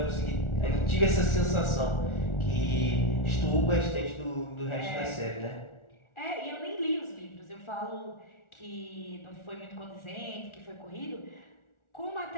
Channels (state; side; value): late; right; 1.4 ms